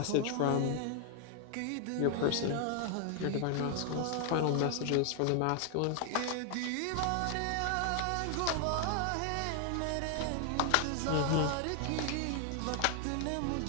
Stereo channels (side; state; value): both; different; correlation 0.00